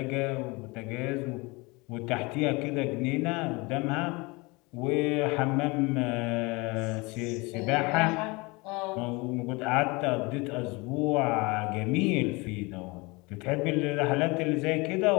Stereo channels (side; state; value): right; quieter; 25.8 dB